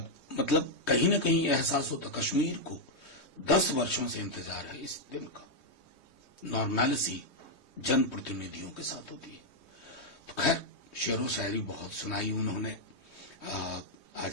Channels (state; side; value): late; right; 3.2 ms